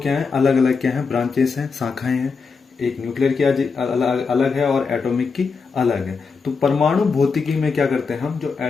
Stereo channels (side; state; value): right; quieter; 5.0 dB